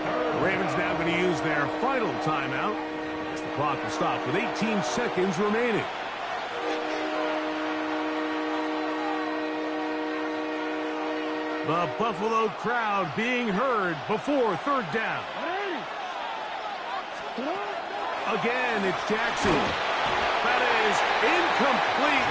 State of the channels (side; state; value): both; identical; correlation 1.00